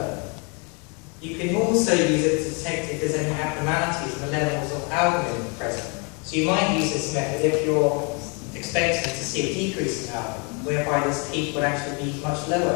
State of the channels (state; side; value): quieter; right; 33.9 dB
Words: You can also use it to detect if there's any abnormalities in the levels of albumin present. So you might use this method if you're expecting to see a decrease in albumin, whereby this peak would actually be much